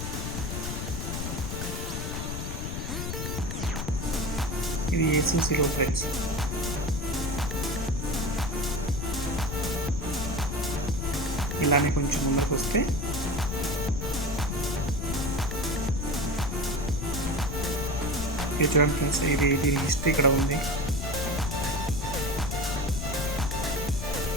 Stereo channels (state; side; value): noise; left; rumble, 4 dB below the sound